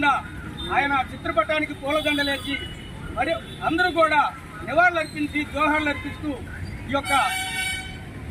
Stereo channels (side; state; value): both; identical; correlation 1.00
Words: ఆయన చిత్రపటానికి పూలదండలేసి మరి అందరూ కూడా నివాళులర్పించి జోహార్లు అర్పిస్తూ